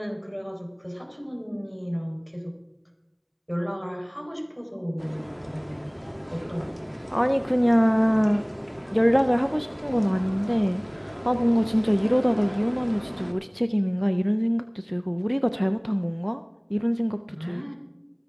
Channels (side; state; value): both; identical; correlation 1.00